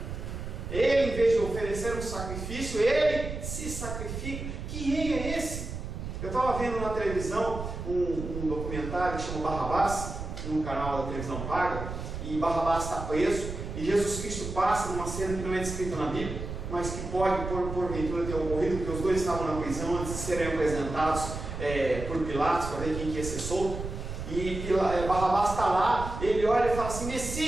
Ele, em vez de oferecer um sacrifício, ele se sacrifica. Que rei é esse? Eu estava vendo na televisão um documentário que chama Barrabás, no canal da televisão paga, e Barrabás está preso, e Jesus Cristo passa numa cena que não é descrita na Bíblia, mas que pode, porventura, ter ocorrido, porque os dois estavam na prisão antes de serem apresentados por Pilatos, para ver quem ia ser solto. E Barrabás está lá, ele olha e fala assim:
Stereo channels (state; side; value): noise; right; rumble, 7 dB below the sound